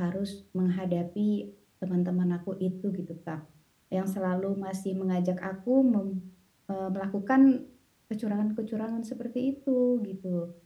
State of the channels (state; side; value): identical; both; correlation 1.00